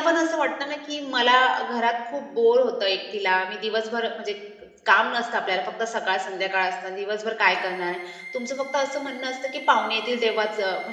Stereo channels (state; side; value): identical; both; correlation 1.00